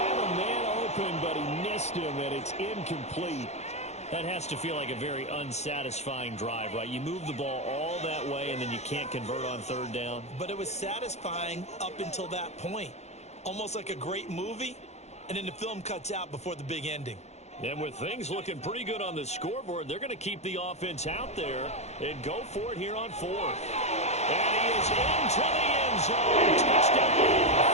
a man open, but he missed him, and it's incomplete. That has to feel like a very unsatisfying drive, right? You move the ball all that way, and then you can't convert on 3rd down. But it was satisfying up until that point. Almost like a great movie, and then the film cuts out before the big ending. And with things looking pretty good on the scoreboard, they're going to keep the offense out there and go for it here on 4th. And he is into the end zone. Touchdown,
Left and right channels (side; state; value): right; late; 0.32 ms